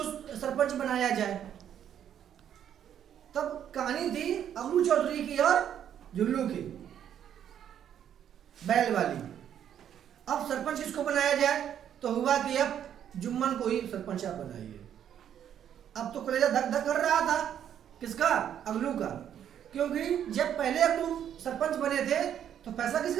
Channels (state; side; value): quieter; left; 9.7 dB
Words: सरपंच बनाया जाए। तब कहानी थी अबलू चौधरी की और जुल्लू की, बैल वाली। अब सरपंच किसको बनाया जाए, तो हुआ कि अब जुम्मन को ही सरपंच आप बनाइए। अब तो कलेजा धक धक कर रहा था, किसका? अबलू का। क्योंकि जब पहले अबलू सरपंच बने थे तो फैसला